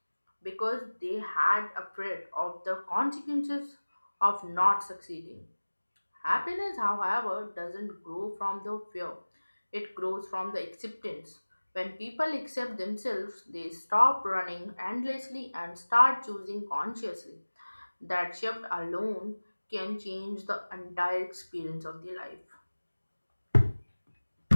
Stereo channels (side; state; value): both; inverted; correlation -1.00